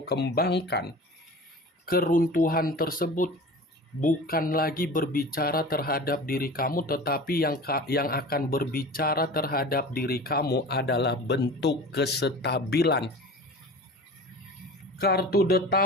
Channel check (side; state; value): both; normal; correlation 0.37